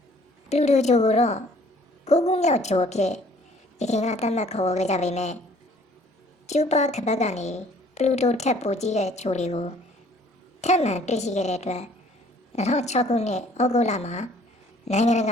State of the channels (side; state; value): both; normal; correlation 0.57